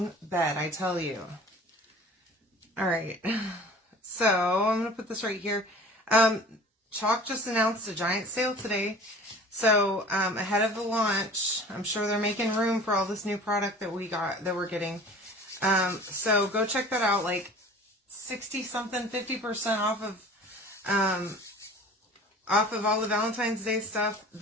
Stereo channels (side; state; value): both; normal; correlation 0.43